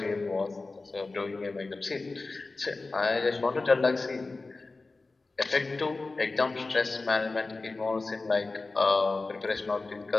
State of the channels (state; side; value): quieter; right; 3.5 dB